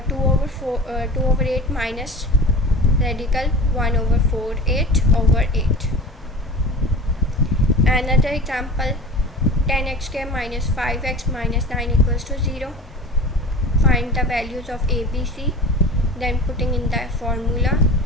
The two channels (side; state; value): both; normal; correlation 0.36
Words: over 8 minus radical 1 over 48 over 8. Another example, 10x square minus 5x minus 9 equals to 0. Find the values of a, b, c, then putting in the formula,